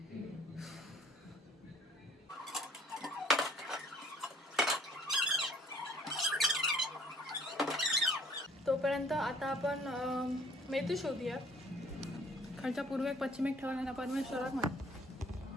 तोपर्यंत आता आपण मेथी शोधूया. खालच्या पूर्वेक पश्चिमेक ठेवला परमेश्वराक माहिती.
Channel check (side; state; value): both; normal; correlation 0.56